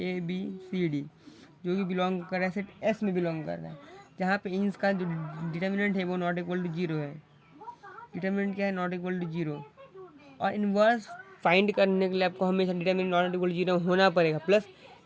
ABCD जो कि बिलोंग कर रहा है सेट S में बिलोंग कर रहा है, जहाँ पे इंस का जो डिटरमिनेंट है वो नॉट इक्वल टू जीरो है। डिटरमिनेंट क्या है, नॉट इक्वल टू जीरो। और इन्वर्स फाइंड करने के लिए आपको हमेशा determinant not equal to zero होना पड़ेगा, प्लस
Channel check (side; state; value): both; identical; correlation 1.00